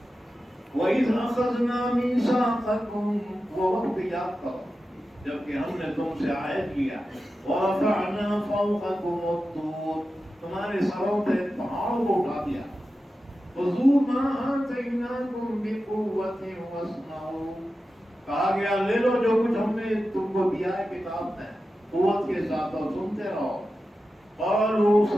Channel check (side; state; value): both; normal; correlation 0.92